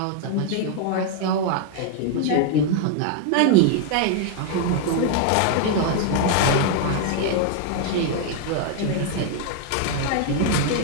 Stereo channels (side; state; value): both; different; correlation 0.00